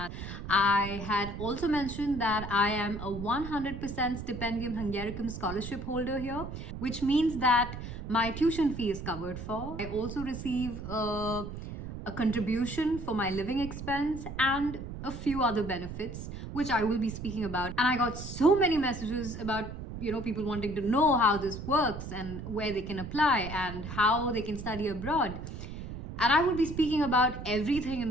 I had also mentioned that I am a 100% Stipendium Hungaricum scholarship holder here, which means that my tuition fee is covered for. I also receive a contribution for my living expense and a few other benefits, which I will be speaking about. And I got so many messages about people wanting to know how this works and where they can apply and how they can study abroad. And I will be speaking about everything in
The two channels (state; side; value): noise; right; rumble, 8 dB below the sound